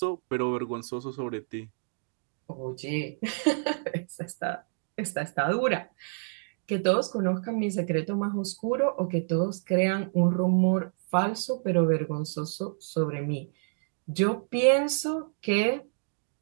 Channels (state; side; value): silent; left; digital silence